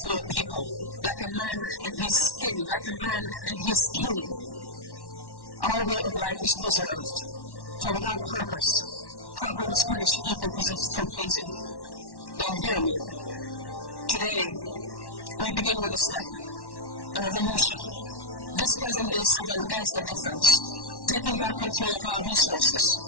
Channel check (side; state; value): right; late; 1.1 ms